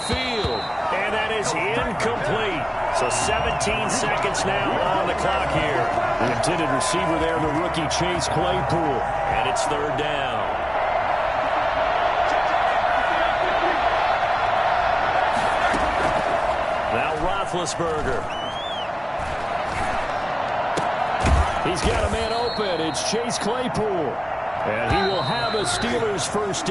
field. And that is incomplete. So 17 seconds now on the clock here. The intended receiver there, the rookie Chase Claypool. And it's 3rd down. Now Roethlisberger. He's got a man open. It's Chase Claypool. And he will have a Steelers 1st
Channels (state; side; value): identical; both; correlation 1.00